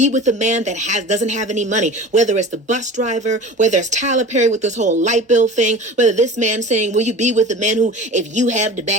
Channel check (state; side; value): normal; both; correlation 0.37